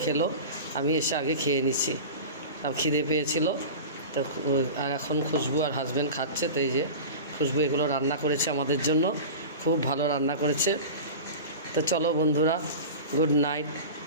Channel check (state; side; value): inverted; both; correlation -0.31